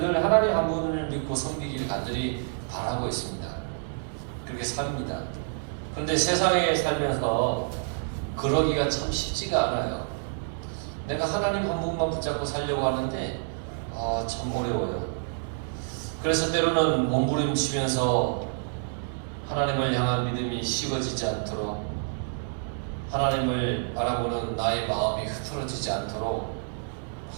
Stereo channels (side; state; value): left; silent; digital silence